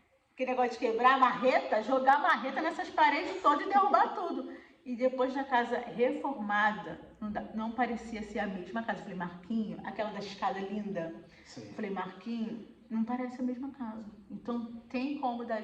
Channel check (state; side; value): identical; both; correlation 1.00